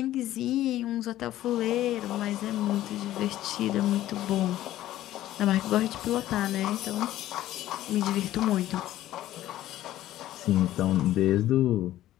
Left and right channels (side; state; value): right; quieter; 14.0 dB